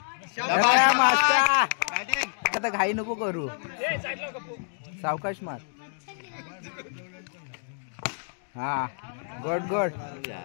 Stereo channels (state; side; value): silent; right; 59 dB below the other